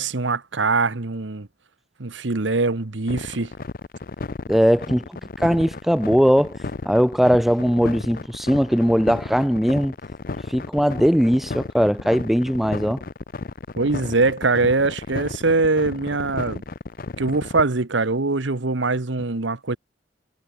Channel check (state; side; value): normal; both; correlation 0.60